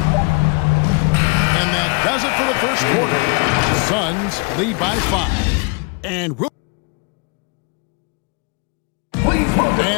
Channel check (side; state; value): right; quieter; 32.7 dB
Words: And that does it for the first quarter. Suns lead by 5. And